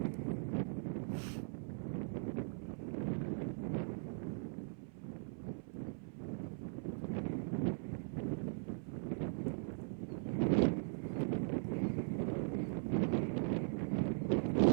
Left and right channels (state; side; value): silent; left; 51 dB below the other